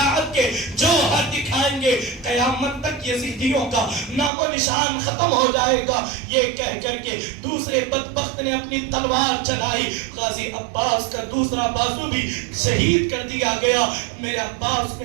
کے جوہر دکھائیں گے، قیامت تک یزیدیوں کا نام و نشان ختم ہو جائے گا۔ یہ کہہ کر کے دوسرے بدبخت نے اپنی تلوار چلائی، غازی عباس کا دوسرا بازو بھی شہید کر دیا گیا۔ میرے عباس نے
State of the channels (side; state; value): left; drops out; at 4.3 s